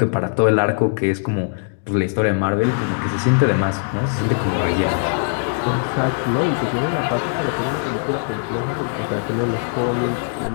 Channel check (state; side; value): silent; right; 65 dB below the other